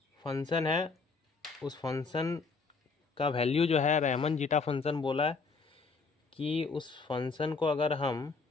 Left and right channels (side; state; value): right; quieter; 4.5 dB